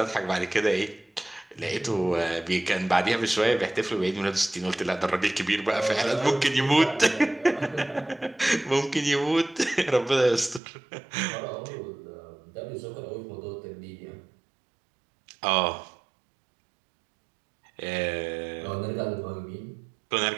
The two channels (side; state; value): left; drops out; at 10.6 s